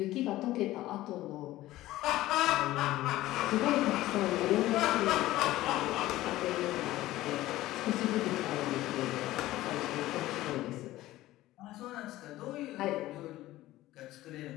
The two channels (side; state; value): right; quieter; 16.2 dB